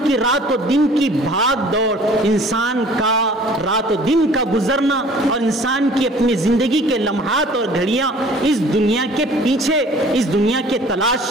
کی رات و دن کی بھاگ دوڑ، انسان کا رات و دن کا گزرنا اور انسان کی اپنی زندگی کے لمحات اور گھڑیاں اس دنیا کے پیچھے، اس دنیا کے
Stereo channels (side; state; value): both; normal; correlation 0.51